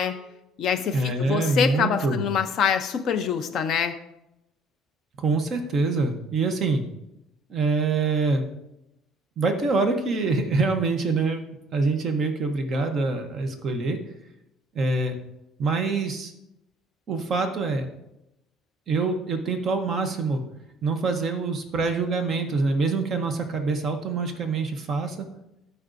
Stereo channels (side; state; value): both; normal; correlation 0.57